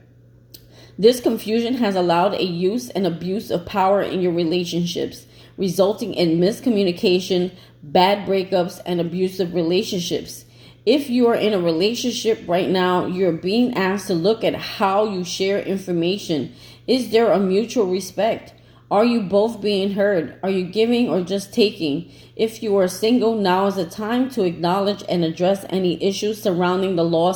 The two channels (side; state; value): both; identical; correlation 1.00